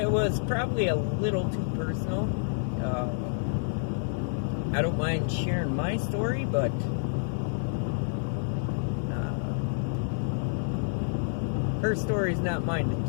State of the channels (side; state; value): right; silent; digital silence